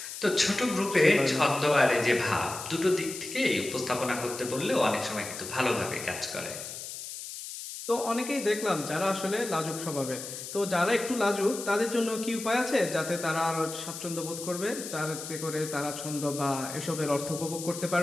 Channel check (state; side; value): noise; left; hiss, 9 dB below the sound